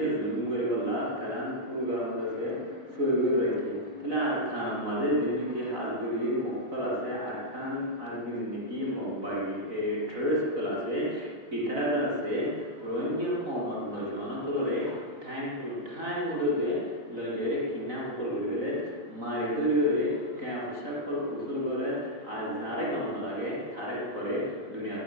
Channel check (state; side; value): late; left; 4.0 ms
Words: जुलुम করে বলা তারা পুরো আছে সৈগুর রাখি তাহলে আরকান আমাদের যেদিকে হাজগুড়ি মকল আছে আরকান আরবি যেদিকে মকবাগি ট্রেস কল আছে ইতারা আছে রোহিঙ্গা কমন নজন করে টাইম টু টাইম মধ্যে লজরে কিনা কল করবে মারি দরিয়ে ক্যাম্প সকল কুশল করে আর যারে কাম লাগে তারে করে